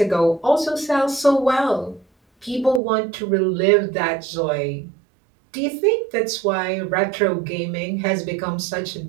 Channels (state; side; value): drops out; left; at 2.8 s